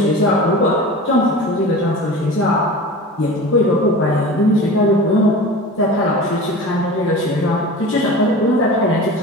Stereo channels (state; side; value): normal; both; correlation 0.35